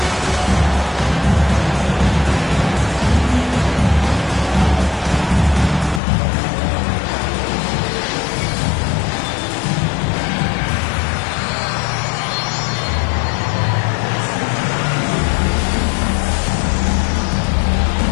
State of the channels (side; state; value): right; drops out; at 6.0 s